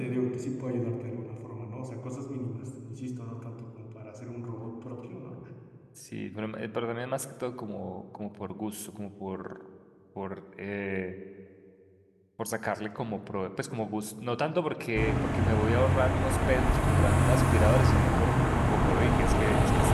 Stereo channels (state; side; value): identical; both; correlation 1.00